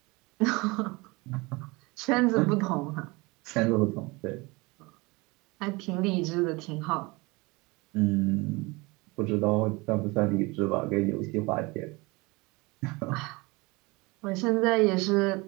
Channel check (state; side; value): quieter; left; 24.8 dB